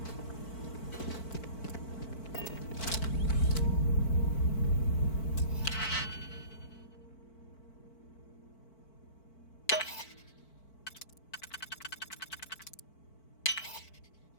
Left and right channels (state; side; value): late; right; 4.5 ms